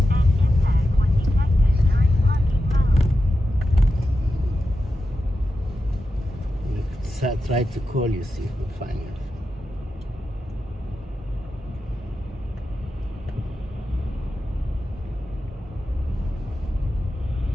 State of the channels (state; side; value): normal; both; correlation 0.91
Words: I try to call you, see if we find you.